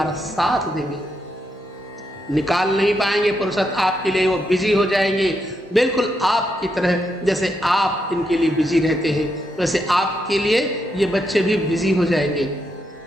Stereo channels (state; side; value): normal; both; correlation 0.81